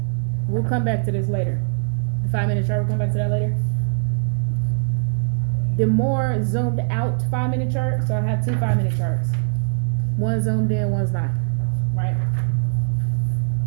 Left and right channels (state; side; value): silent; left; digital silence